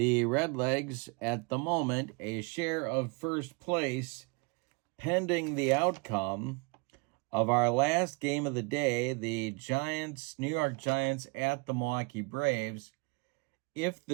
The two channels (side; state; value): left; quieter; 30.7 dB